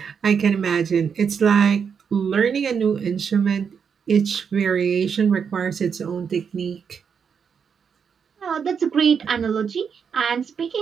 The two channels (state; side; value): quieter; left; 6.7 dB